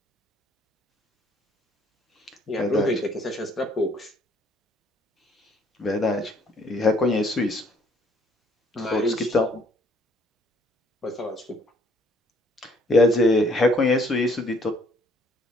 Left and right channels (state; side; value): normal; both; correlation 0.64